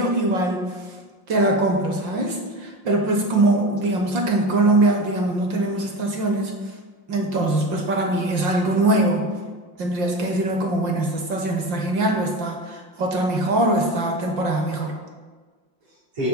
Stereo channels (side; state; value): left; late; 5.6 ms